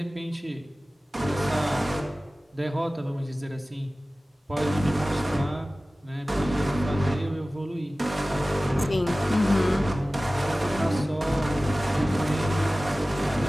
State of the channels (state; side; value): normal; both; correlation 0.97